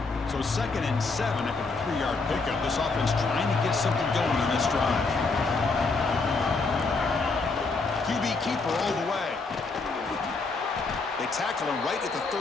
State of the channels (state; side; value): quieter; right; 4.0 dB